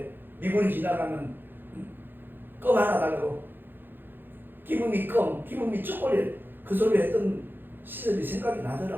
미군이 지나가면 껌 하나 달라고 기분이 껌, 기분이 초콜릿 그 소리 했던 시절이 생각이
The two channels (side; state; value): left; late; 0.097 ms